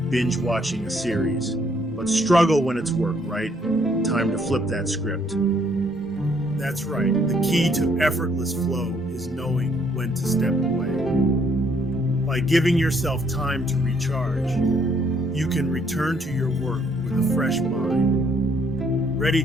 binge watching a series, but struggle when it's work, right? Time to flip that script. That's right. The key to effortless flow is knowing when to step away. By giving yourself time to recharge, you can return to your work with a fresh mind, ready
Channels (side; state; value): both; normal; correlation 0.67